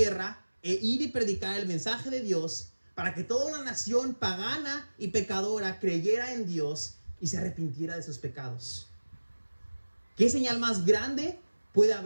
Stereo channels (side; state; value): both; inverted; correlation -1.00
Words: e ir y predicar el mensaje de Dios, para que toda una nación pagana y pecadora creyera en Dios y se arrepintiera de sus pecados. ¿Qué señal más grande puede